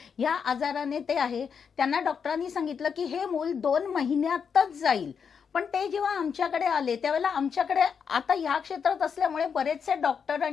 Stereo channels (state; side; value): quieter; right; 6.6 dB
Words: या आजाराने ते आहे. त्यांना डॉक्टरांनी सांगितलं की हे मूल 2 महिन्यातच जाईल. पण ते जेव्हा आमच्याकडे आले त्यावेळेला आमच्याकडे आता ह्या क्षेत्रात असल्यामुळे बरेचसे डॉक्टर